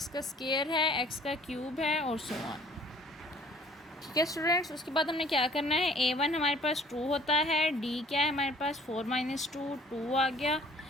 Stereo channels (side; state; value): both; normal; correlation 0.54